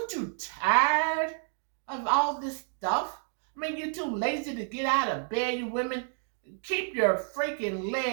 you tired of all this stuff? I mean, you're too lazy to get out of bed, you women. Keep your freaking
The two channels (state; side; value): silent; left; 58 dB below the other